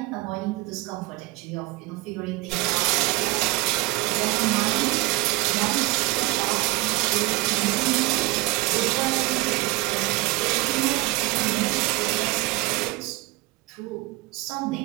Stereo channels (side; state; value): left; quieter; 20.7 dB